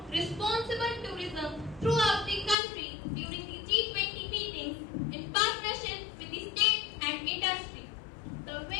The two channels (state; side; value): drops out; right; at 2.6 s